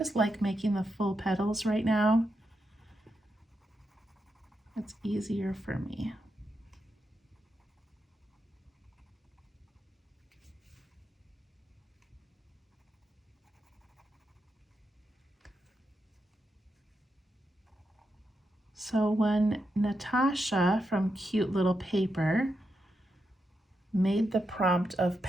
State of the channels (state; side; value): normal; both; correlation 0.85